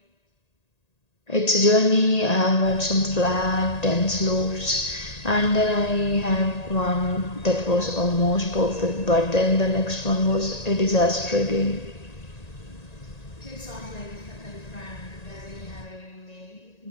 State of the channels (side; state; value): right; late; 1.8 ms